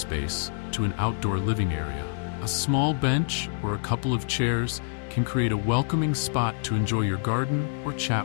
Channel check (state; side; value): silent; right; digital silence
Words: to an outdoor living area. A small bench or a couple of chairs can create a welcoming spot to enjoy your garden or